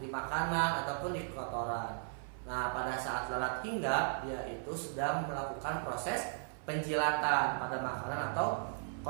makanan ataupun di kotoran. Nah, pada saat lalat hinggap, dia itu sedang melakukan proses penjilatan pada makanan atau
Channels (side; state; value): left; silent; 53 dB below the other